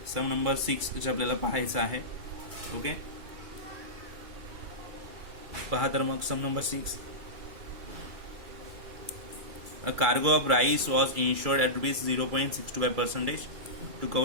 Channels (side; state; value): left; late; 2.3 ms